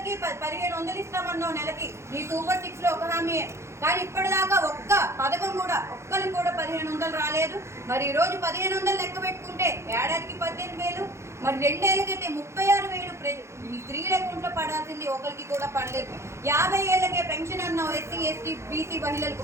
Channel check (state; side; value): late; left; 0.13 ms